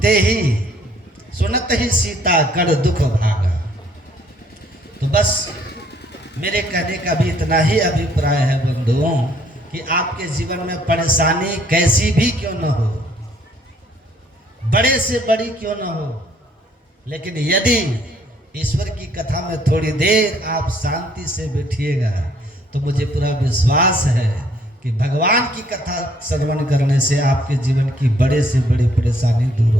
ही सुनत ही सीता कर दुख भागा। तो बस मेरे कहने का भी इतना ही अभिप्राय है बंधुओं, कि आपके जीवन में परेशानी कैसी भी क्यों न हो, बड़े से बड़ी क्यों न हो, लेकिन यदि ईश्वर की कथा में थोड़ी देर आप शांति से बैठिएगा तो मुझे पूरा विश्वास है कि भगवान की कथा श्रवण करने से आपके जीवन की बड़े से बड़ी परेशानी दूर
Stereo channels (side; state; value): both; normal; correlation 0.63